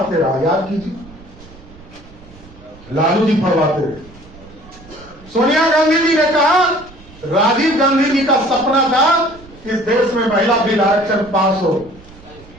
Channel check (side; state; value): right; noise; rumble, 22 dB below the sound